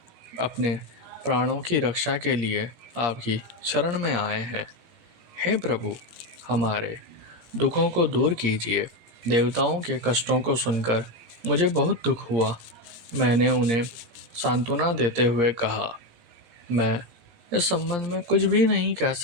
अपने प्राणों की रक्षा के लिए आपकी शरण में आए हैं। हे प्रभु, हमारे दुखों को दूर कीजिए। देवताओं के कष्टों को सुनकर मुझे बहुत दुख हुआ। मैंने उन्हें सांत्वना देते हुए कहा, मैं इस संबंध में कुछ भी नहीं कह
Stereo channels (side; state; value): left; late; 17 ms